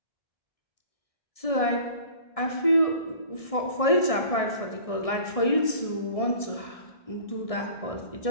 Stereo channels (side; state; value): right; late; 1.6 ms